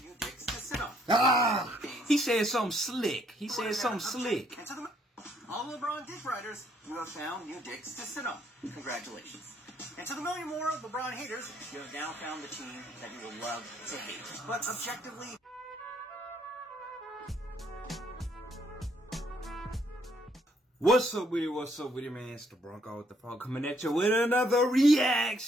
new dicks to sit on. Ah! He said something slick. He said something slick. And to the... All LeBron dick riders, you have found new dicks to sit on. Congratulations. And to the million more LeBron haters, you have now found the team that you will love to hate. But objectively... What's up with it, man? It's the Bronco with the Frog coming at you with another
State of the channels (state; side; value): normal; both; correlation 0.69